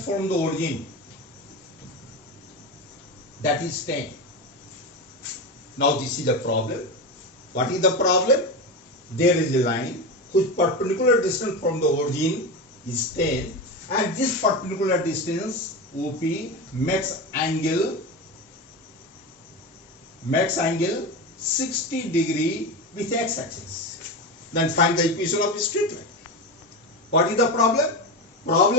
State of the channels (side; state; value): both; normal; correlation 0.20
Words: from the origin, that is 10. Now this is the problem. What is the problem? There is a line whose perpendicular distance from the origin is 10, and this perpendicular distance OP makes angle 60 degree with X axis. Then find the equation of a straight line. What is the problem?